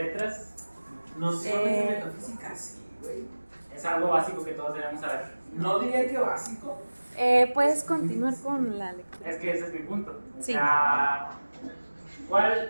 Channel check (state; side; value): inverted; both; correlation -1.00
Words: Nociones de metafísica, sí, güey. Es algo básico que todos debemos saber. No diría que básico. puedes continuar con la lectura. Es que ese es mi punto. Sí.